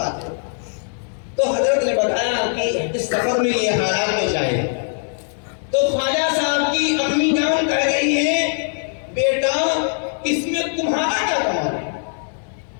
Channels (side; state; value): right; silent; digital silence